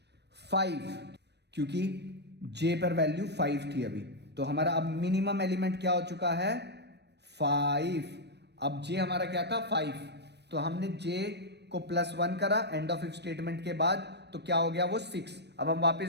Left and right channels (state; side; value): late; left; 0.49 ms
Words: 5, क्योंकि j पर वैल्यू 5 थी अभी। तो हमारा अब मिनिमम एलिमेंट क्या हो चुका है 5। अब j हमारा क्या था 5, तो हमने j को प्लस 1 करा एंड ऑफ इफ स्टेटमेंट के बाद, तो क्या हो गया वो 6। अब हम